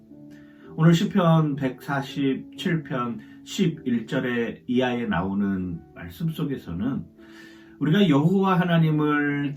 오늘 시편 147편 11절의 이하에 나오는 말씀 속에서는 우리가 여호와 하나님을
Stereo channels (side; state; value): both; identical; correlation 1.00